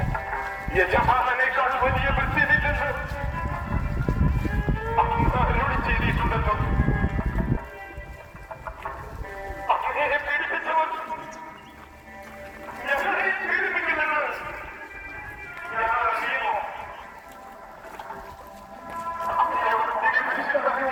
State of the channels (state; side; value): identical; both; correlation 1.00